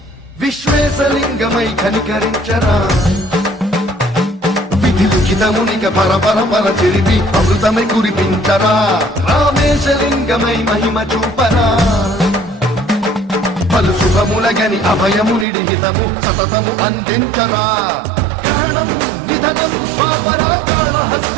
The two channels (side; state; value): left; drops out; at 15.5 s